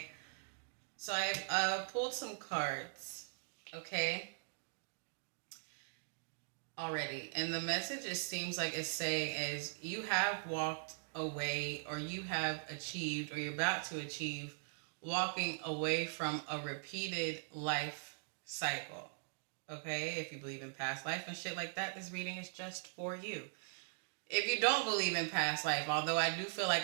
so I've pulled some cards, okay, already. And the message, it seems like it's saying is you have walked away, or you have achieved, or you're about to achieve walking away from a repeated life cycle. Okay, if you believe in past life and shit like that, this reading is just for you. If you don't believe in past life, although I do feel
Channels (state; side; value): silent; left; digital silence